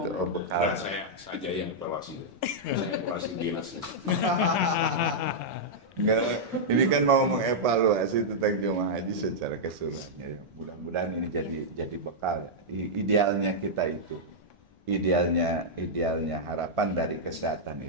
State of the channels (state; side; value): normal; both; correlation -0.08